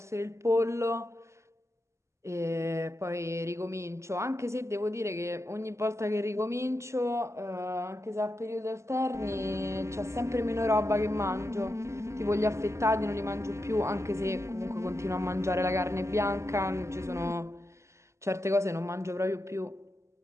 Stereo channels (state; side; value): late; left; 0.13 ms